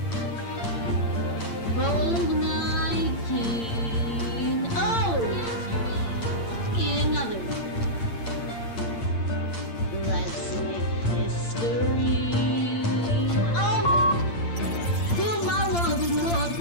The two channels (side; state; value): right; late; 8.8 ms